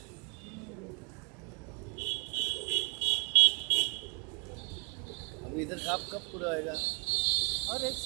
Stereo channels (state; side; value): quieter; left; 36.0 dB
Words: अभी इधर काम कब पूरा होएगा? और 1